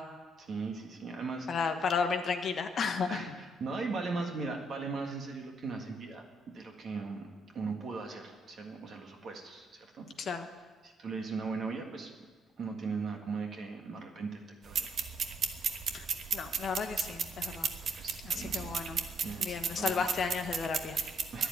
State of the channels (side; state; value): both; normal; correlation 0.71